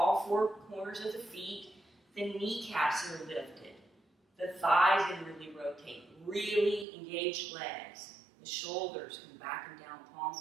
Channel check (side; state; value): left; drops out; at 6.9 s